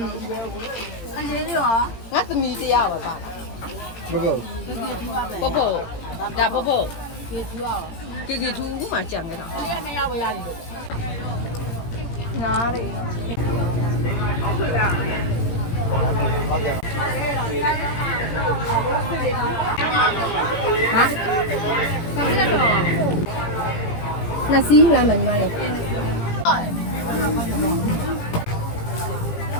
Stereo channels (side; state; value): right; late; 18 ms